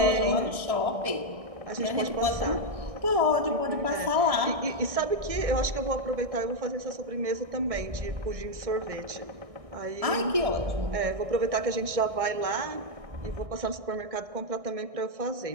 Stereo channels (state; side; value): late; left; 1.6 ms